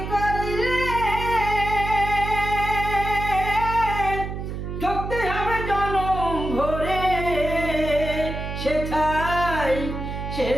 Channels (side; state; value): right; noise; hum, 6 dB below the sound